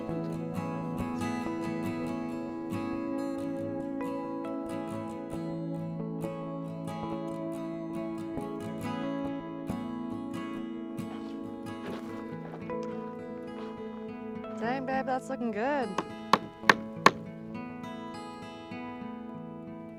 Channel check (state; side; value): identical; both; correlation 1.00